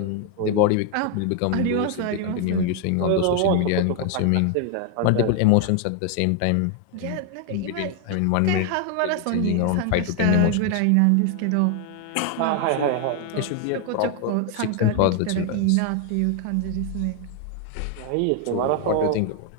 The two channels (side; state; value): both; different; correlation 0.00